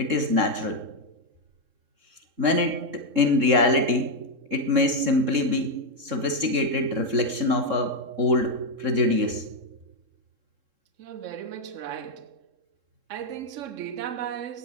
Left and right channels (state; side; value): late; left; 3.7 ms